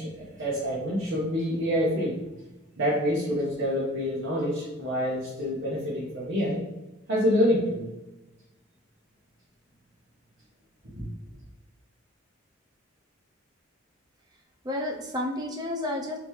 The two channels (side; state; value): both; normal; correlation 0.43